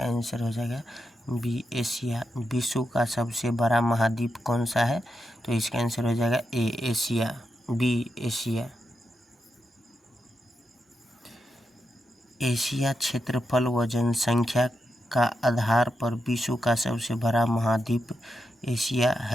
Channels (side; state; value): both; normal; correlation 0.86